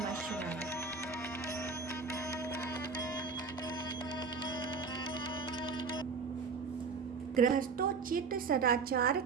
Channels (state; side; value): quieter; left; 4.9 dB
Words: शिवाय। गृहस्थोचित सदाचार